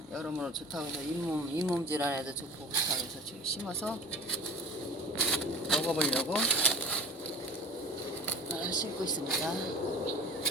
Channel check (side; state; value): both; normal; correlation 0.40